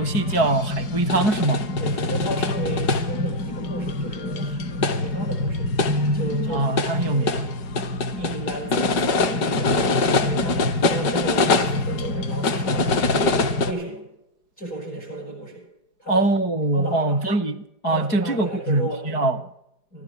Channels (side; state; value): right; late; 4.9 ms